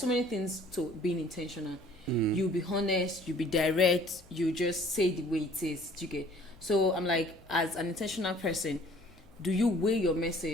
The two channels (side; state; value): both; normal; correlation 0.54